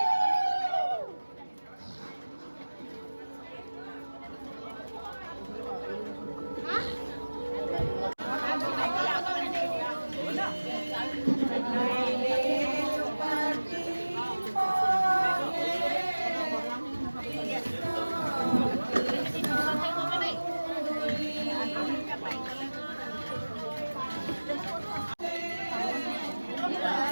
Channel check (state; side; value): inverted; both; correlation -1.00